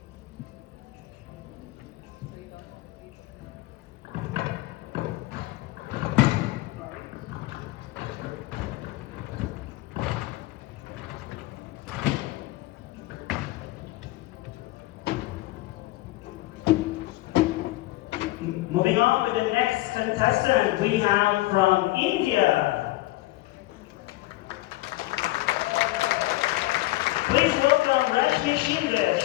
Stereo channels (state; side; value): quieter; right; 18.6 dB